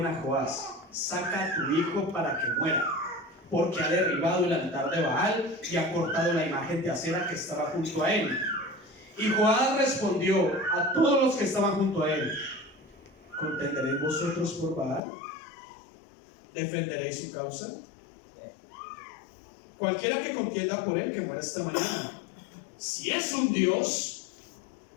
a Joás, saca a tu hijo para que muera, porque ha derribado el altar de Baal y ha cortado la imagen de acera que estaba junto a él. Y Joás respondió a todos los que estaban junto a él, ¿contenderéis vosotros por Baal? ¿Defenderéis su causa? Cualquiera que contienda por él, que muera esta mañana. Si es un Dios,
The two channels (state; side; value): drops out; right; at 15.0 s